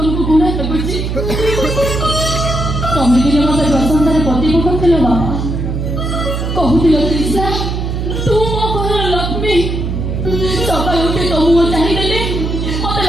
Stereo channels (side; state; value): right; noise; hum, 2 dB below the sound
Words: ଘୃଣା ଲାଗୁଛି? ତମେ ଦିନ ମତେ ପ୍ରଶଂସାରେ ପ୍ରତିଭ କରିଥିଲ ବାପା। କହୁଥିଲ ତ୍ରିଷା ତୁ ମୋ ଘରର ଲକ୍ଷ୍ମୀ। ସକାଳୁ ଉଠି ତୋ ମୁହଁ ଚାହିଁଦେଲେ ମତେ